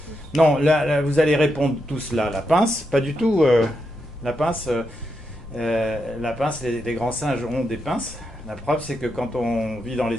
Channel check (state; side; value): normal; both; correlation 0.84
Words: Non, là, vous allez répondre tous là. La pince, pas du tout. La pince, les grands singes ont des pinces. La preuve, c'est que quand on vit dans